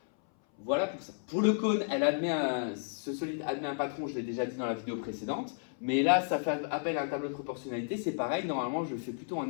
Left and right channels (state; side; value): silent; right; 56 dB below the other